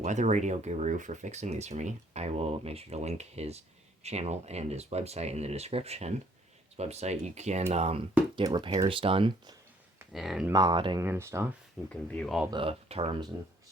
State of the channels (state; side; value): normal; both; correlation 0.63